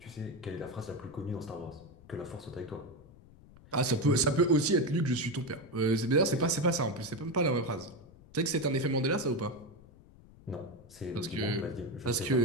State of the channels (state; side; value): noise; left; rumble, 23 dB below the sound